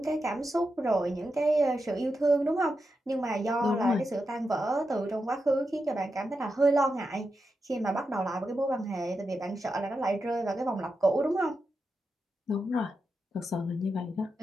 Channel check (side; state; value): both; normal; correlation 0.88